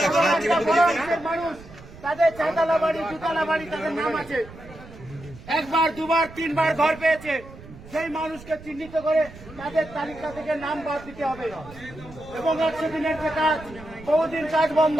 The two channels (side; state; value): right; noise; rumble, 18 dB below the sound